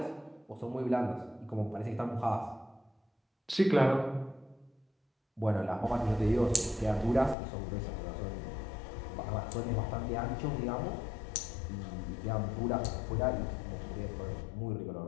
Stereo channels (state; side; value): drops out; right; at 7.4 s